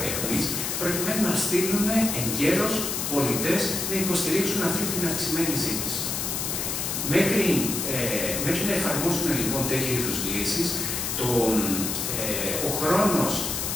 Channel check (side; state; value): left; noise; hiss, 2 dB below the sound